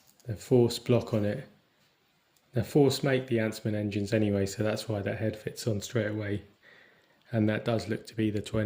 the Force block on it. Now Force make the Ansman engines anyway, so that's why that head fits on straight away, and that does look to be the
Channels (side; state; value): both; identical; correlation 1.00